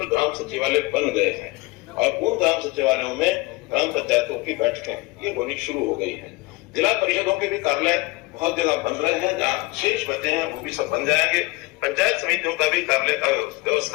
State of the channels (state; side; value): quieter; right; 23.2 dB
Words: ग्राम सचिवालय बन गए हैं, और उन ग्राम सचिवालयों में ग्राम पंचायतों की बैठकें ये होनी शुरू हो गई है। जिला परिषदों के भी कार्यालय बहुत जगह बन रहे हैं, जहाँ शेष बचे हैं वो भी सब बन जाएंगे। पंचायत समितियों का भी कार्यालय का